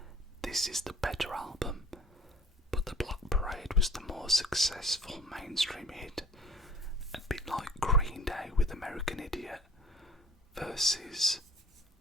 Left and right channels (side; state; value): both; normal; correlation 0.52